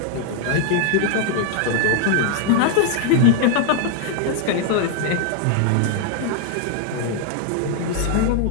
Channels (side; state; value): both; different; correlation 0.00